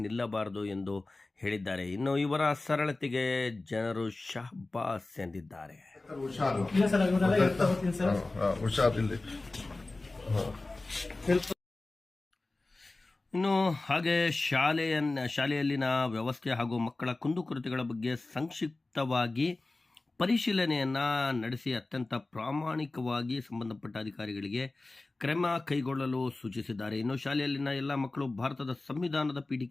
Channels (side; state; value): right; quieter; 3.1 dB